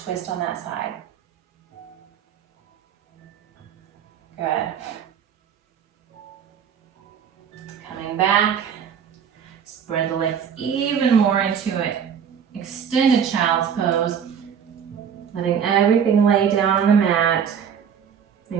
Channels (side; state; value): left; quieter; 7.7 dB